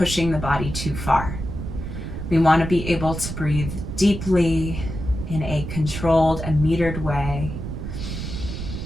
the body too far. We want to be able to breathe deeply in a controlled and metered way.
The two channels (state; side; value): noise; right; rumble, 6 dB below the sound